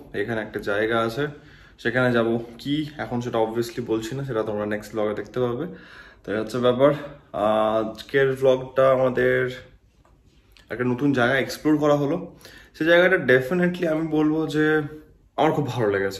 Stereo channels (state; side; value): identical; both; correlation 1.00